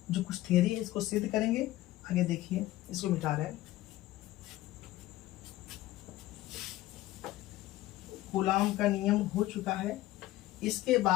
जो कुछ थ्योरी है इसको सिद्ध करेंगे। आगे देखिए, इसको मिटा रहे हैं। कूलाम का नियम हो चुका है। इसके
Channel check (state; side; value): quieter; right; 16.1 dB